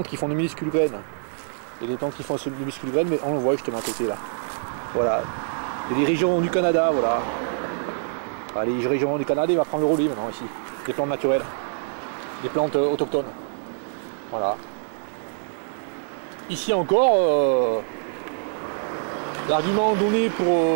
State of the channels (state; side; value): silent; left; 62 dB below the other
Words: qui font de minuscules graines. Et les plantes qui font de minuscules graines, mais on le voit justement à côté là. Voilà. Et les régions du Canada, voilà. Les régions du Canada, il va prendre le relais maintenant ici. Des plantes naturelles. Des plantes autochtones. Voilà. Ici encore, l'argument donné pour